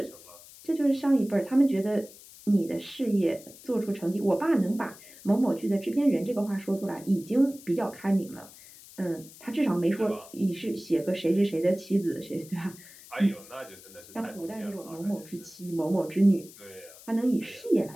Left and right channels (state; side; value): noise; left; hiss, 20 dB below the sound